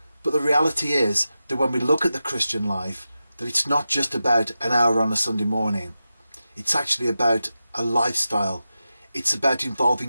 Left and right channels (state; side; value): inverted; both; correlation -0.92